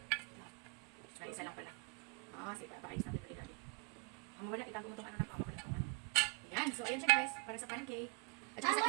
ay, isa lang pala. Sige, paayos natin ito ilalim. Ang wala, itago mo itong ano na pamawala. Yan. So, ayan siya, guys. Para sa pancake. At saka I sa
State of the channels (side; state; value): left; quieter; 33.6 dB